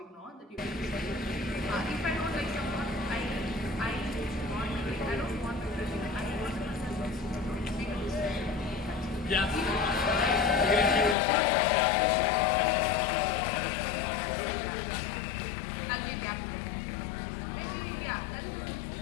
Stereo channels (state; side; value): drops out; right; at 11.2 s